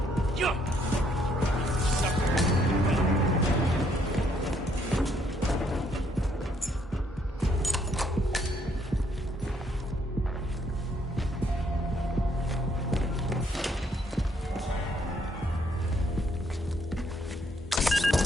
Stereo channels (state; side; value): normal; both; correlation 0.69